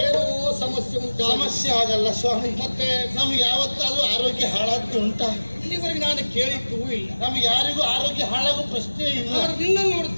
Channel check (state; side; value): inverted; both; correlation -1.00